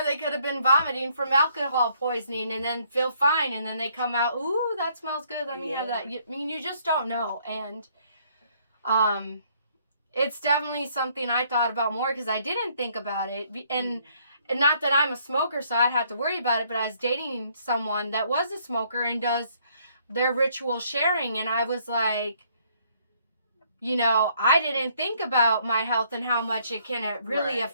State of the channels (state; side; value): inverted; both; correlation -0.66